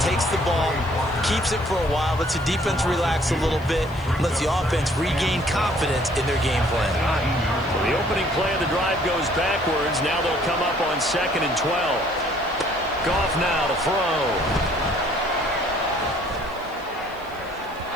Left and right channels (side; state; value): left; noise; hiss, 26 dB below the sound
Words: takes the ball, keeps it for a while, lets the defense relax a little bit, lets the offense regain confidence in their game plan. Well, the opening play of the drive goes backwards. Now they'll come up on 2nd and 12. Goff now to throw.